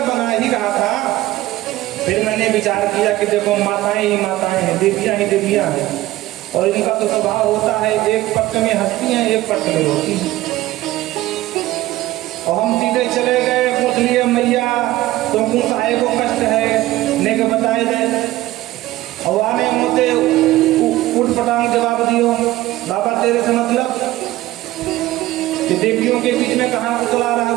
बना ही रहा था, फिर मैंने विचार किया कि देखो माताएं ही माताएं हैं, देवियां ही देवियां हैं, और इनका तो स्वभाव होता है एक पक्ष में हंसती हैं, एक पक्ष में रोती हैं। और हम सीधे चले गए, पूछ लिए मैया तुमको साहे को कष्ट है, ने के बताए दे। और आने मोते उठ पटांग जवाब दियो, बाबा तेरे से मतलब कि देवियों के बीच में कहाँ उतला रहा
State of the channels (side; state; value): left; quieter; 16.5 dB